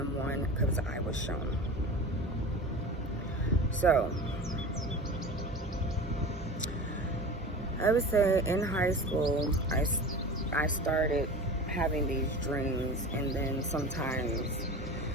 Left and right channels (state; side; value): normal; both; correlation 0.33